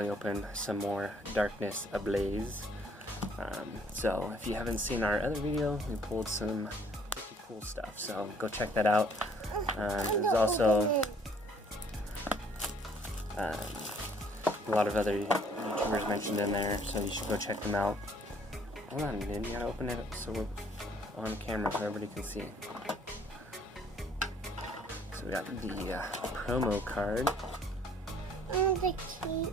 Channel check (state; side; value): normal; both; correlation 0.60